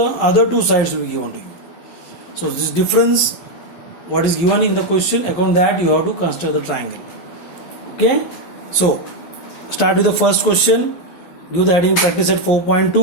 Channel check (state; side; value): late; right; 11 ms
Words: two sides will be given to you. So this difference, what is given in the question, according to that you have to construct the triangle. Okay, so start with the first question. Give the heading practice at